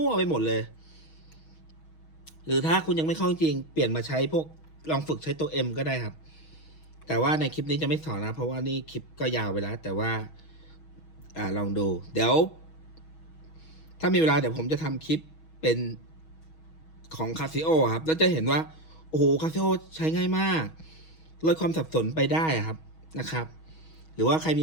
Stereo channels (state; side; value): late; right; 6.3 ms